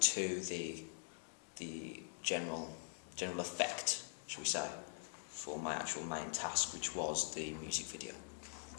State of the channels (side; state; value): right; silent; digital silence